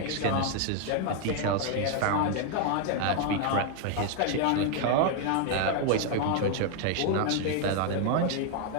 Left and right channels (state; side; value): different; both; correlation 0.00